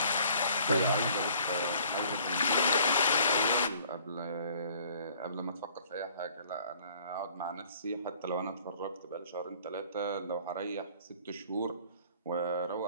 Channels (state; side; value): inverted; both; correlation -0.56